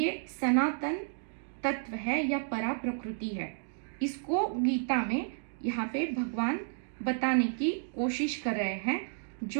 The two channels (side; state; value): left; silent; digital silence